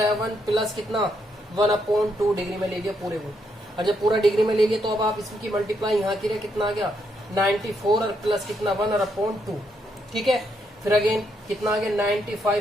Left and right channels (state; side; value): normal; both; correlation 0.77